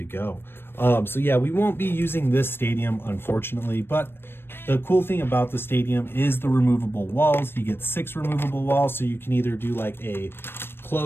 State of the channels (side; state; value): right; late; 0.11 ms